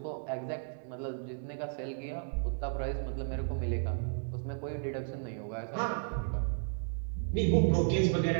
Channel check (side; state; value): left; silent; digital silence